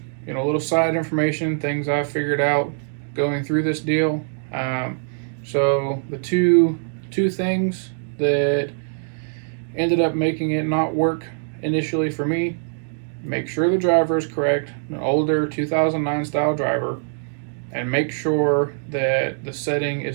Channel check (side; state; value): left; silent; digital silence